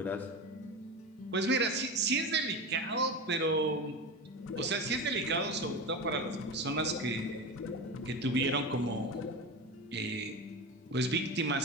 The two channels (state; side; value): normal; both; correlation 0.24